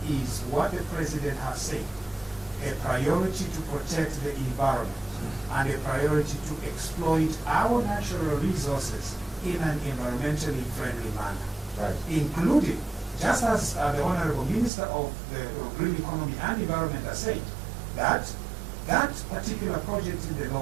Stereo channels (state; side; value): drops out; left; at 14.7 s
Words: is what the president has said. A priority to protect the environment and a priority to exploit our natural resources in an environmentally friendly manner. Right. Including, just as the Honorable Minister of the Green Economy and Environment has said, that that particular project in the